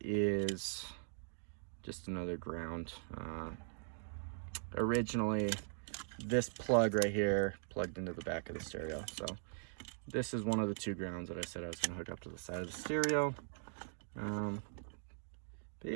is just another ground. Originally, this plug right here plugged into the back of the stereo. So this is one of the two grounds that I said I was going to hook up to the side of the stereo. But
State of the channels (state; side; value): silent; left; digital silence